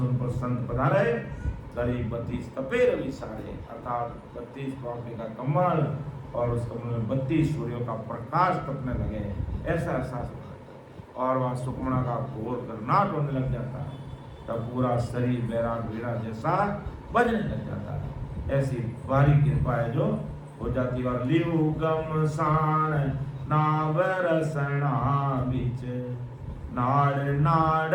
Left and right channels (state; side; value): identical; both; correlation 1.00